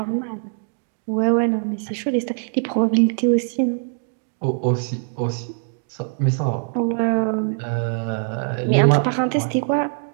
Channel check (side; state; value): left; silent; digital silence